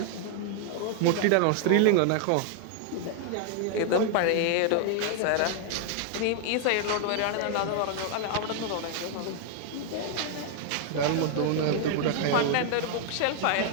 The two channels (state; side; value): different; both; correlation 0.00